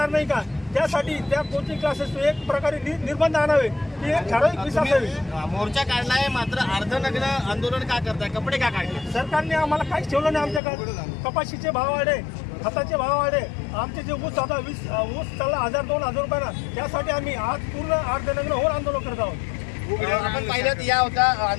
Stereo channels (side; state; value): right; drops out; at 10.6 s